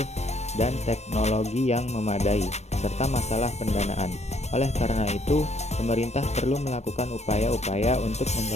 dan teknologi yang memadai, serta masalah pendanaan. Oleh karena itu, pemerintah perlu melakukan upaya-upaya untuk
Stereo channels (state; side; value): late; right; 0.32 ms